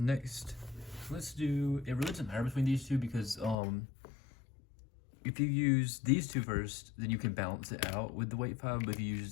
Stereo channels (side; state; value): right; drops out; at 3.6 s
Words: let's do, it really doesn't matter between these two because if you use these two first, then you can balance it out with the weight file, but if you